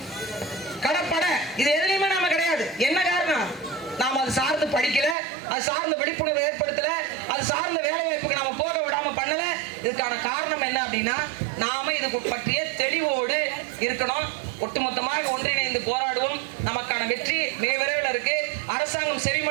கடற்படை, இது எதுலையுமே நாம கிடையாது. என்ன காரணம்? நாம அது சார்ந்து படிக்கல, அது சார்ந்த விழிப்புணர்வு ஏற்படுத்தல, அது சார்ந்த வேலை வாய்ப்புக்கு நாம போக விடாம பண்ணல. இதுக்கான காரணம் என்ன அப்படின்னா நாம இது பற்றிய தெளிவோடு இருக்கணும். ஒட்டுமொத்தமாக ஒன்றிணைந்து போராடுவோம். நமக்கான வெற்றி மிக விரைவில் இருக்கு. அரசாங்கம்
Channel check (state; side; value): drops out; left; at 5.2 s